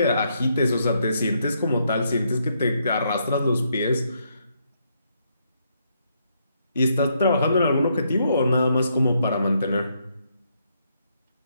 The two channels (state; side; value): inverted; both; correlation -0.75